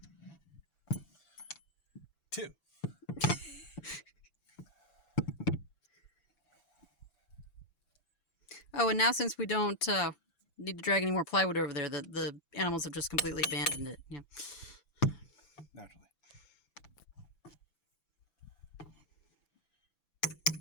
2. Oh, and now since we don't need to drag any more plywood over there, the animals have just completely abandoned it. Yeah. Naturally.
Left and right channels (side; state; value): right; late; 6.0 ms